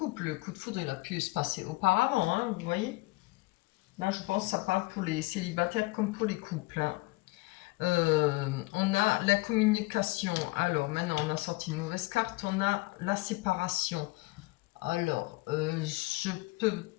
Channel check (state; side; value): quieter; right; 22.8 dB